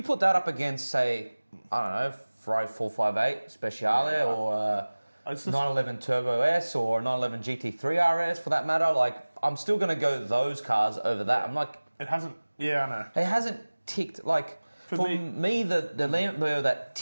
put that up against, say, I don't know, Ferrari 458 Speciale or 911 Turbo S or 911 GT3 RS for that matter, like, I'm still going to go those cars over that. I'm like... It hasn't... Yeah, I know. It hasn't ticked... Like, for me the Lambo that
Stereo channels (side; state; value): both; inverted; correlation -1.00